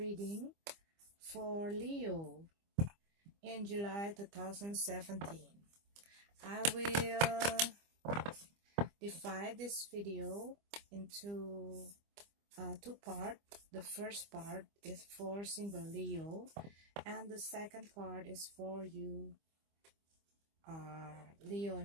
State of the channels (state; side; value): late; left; 25 ms